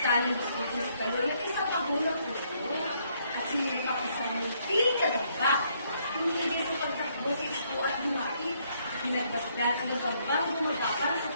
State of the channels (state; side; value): inverted; both; correlation -0.70